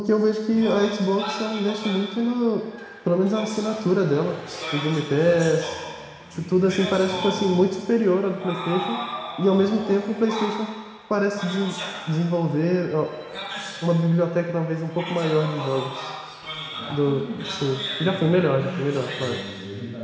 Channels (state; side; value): identical; both; correlation 1.00